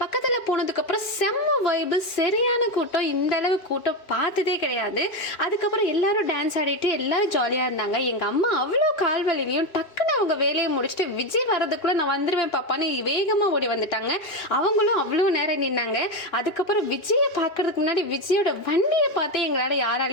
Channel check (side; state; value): right; late; 2.6 ms